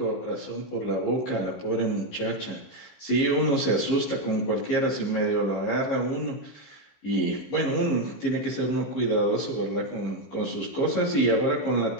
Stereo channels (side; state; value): right; late; 15 ms